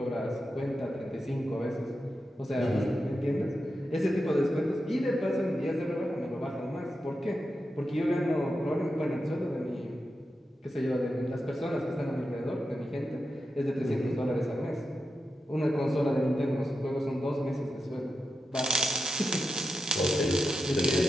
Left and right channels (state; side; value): normal; both; correlation 0.89